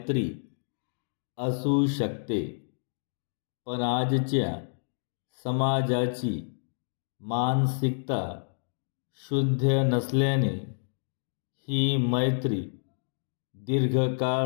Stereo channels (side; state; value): right; silent; digital silence